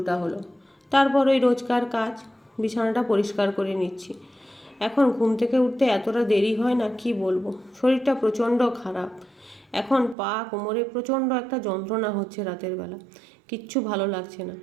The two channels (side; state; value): left; drops out; at 10.2 s